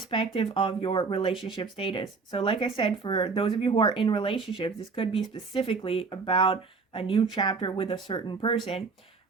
of your relationship status. So like I said, for those of you who are in relationships, this could be specifically about a new chapter with a certain person.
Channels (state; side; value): quieter; left; 4.7 dB